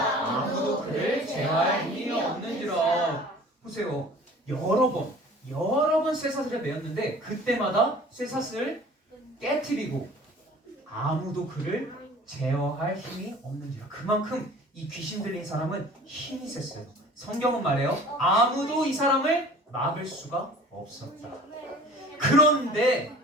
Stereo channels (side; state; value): both; normal; correlation 0.46